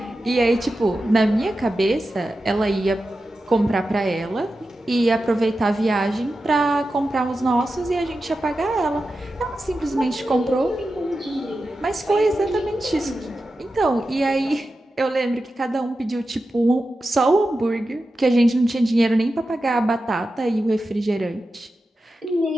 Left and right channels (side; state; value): both; normal; correlation 0.92